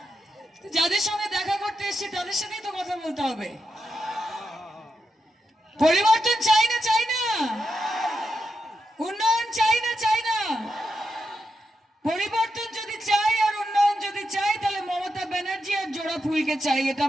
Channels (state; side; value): normal; both; correlation 0.86